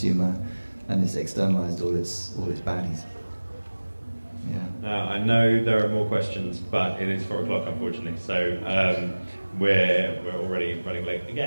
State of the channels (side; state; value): both; inverted; correlation -1.00